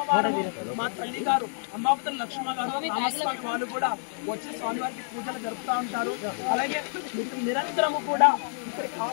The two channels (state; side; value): silent; right; digital silence